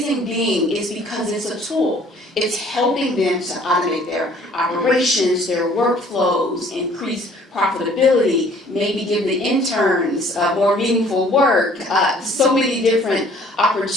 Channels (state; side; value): normal; both; correlation 0.56